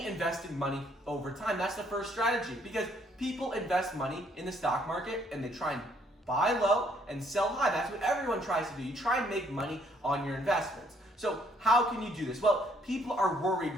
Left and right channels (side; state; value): both; normal; correlation 0.67